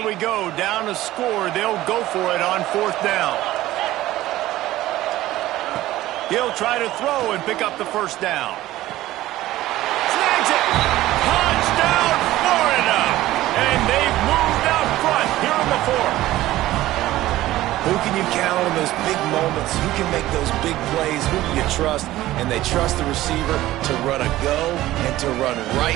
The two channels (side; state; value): left; quieter; 15.7 dB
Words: we go, down to score. They'll go for it on fourth down. He'll try to throw and pick up the first down. Snags it! Touchdown, Florida! And they've moved out front here in the fourth. Who can you count on those big moments? Who can make those big plays? Who do you trust? And they trust the receiver to run a go and to run